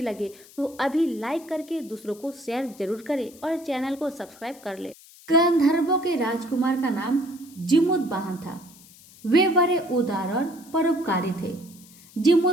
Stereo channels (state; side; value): noise; left; hiss, 23 dB below the sound